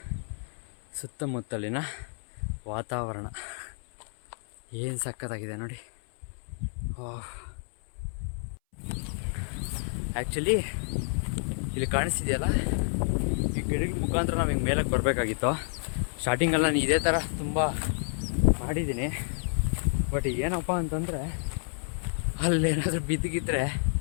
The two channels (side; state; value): right; silent; 58 dB below the other